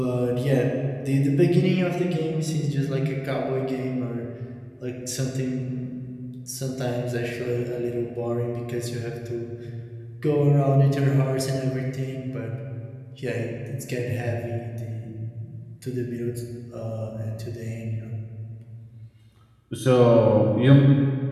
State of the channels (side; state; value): both; identical; correlation 1.00